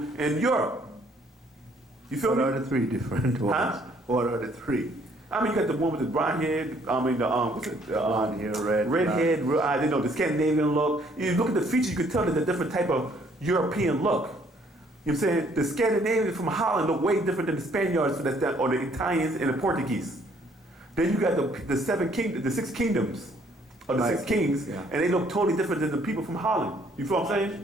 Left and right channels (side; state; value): both; normal; correlation 0.64